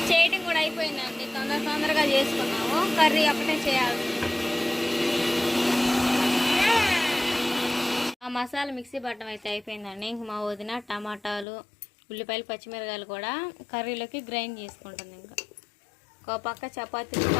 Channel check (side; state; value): right; drops out; at 11.5 s